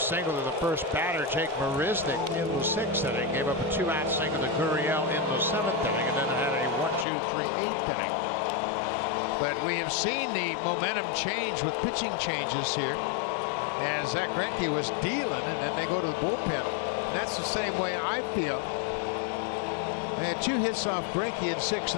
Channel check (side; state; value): right; drops out; at 7.1 s